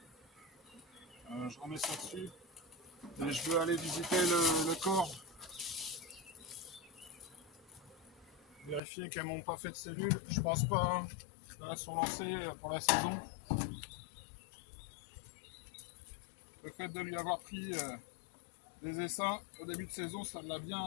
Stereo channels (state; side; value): drops out; right; at 8.8 s